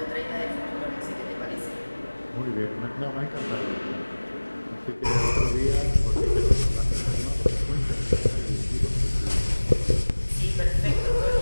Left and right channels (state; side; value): inverted; both; correlation -1.00